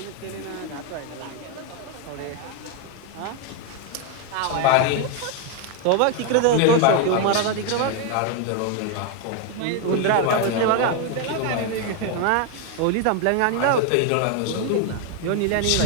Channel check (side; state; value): both; different; correlation 0.01